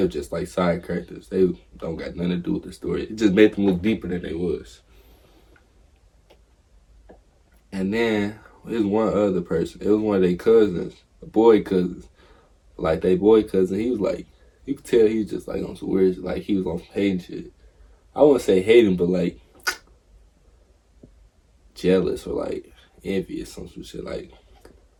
was just like side characters. They don't got nothing to do with the story. It just made them look deeper than they was. And then there's one other person. It was one of their cousins, a boy cousins. Like they boy cousin, he was like, you could tell he was just like on some weird shit. Like he was on some hating shit. I wouldn't say hating, but like jealous or like envious, some shit like.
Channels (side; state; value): both; identical; correlation 1.00